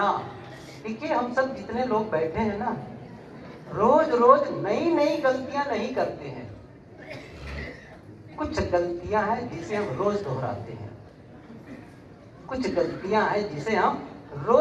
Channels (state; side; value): identical; both; correlation 1.00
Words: देखिए, हम सब जितने लोग बैठे हैं ना, रोज रोज नई नई गलतियां नहीं करते हैं। कुछ गलतियां हैं जिसे हम रोज दोहराते हैं, कुछ गलतियां हैं जिसे हम